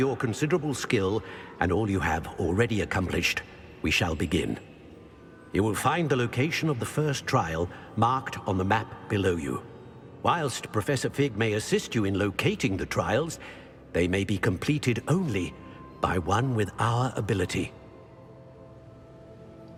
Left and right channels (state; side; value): identical; both; correlation 1.00